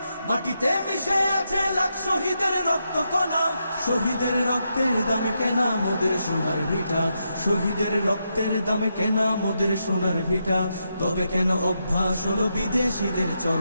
মাটিতে মিশে আছে লাখ শহীদের রক্ত কণা। শহীদের রক্তের দামে কেনা মোদের সোনার ভিটা, শহীদের রক্তের দামে কেনা মোদের সোনার ভিটা। তবে কেন অভ্যাস হলো বিদেশিদের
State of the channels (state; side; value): inverted; both; correlation -0.83